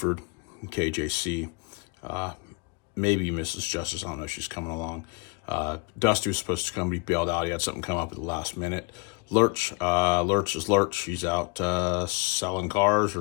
and KJC. Maybe Mrs. Justice, I don't know if she's coming along. Dusty was supposed to come be bailed out. He had something come up at the last minute. Lurch is Lurch. He's out selling cars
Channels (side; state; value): right; quieter; 32.1 dB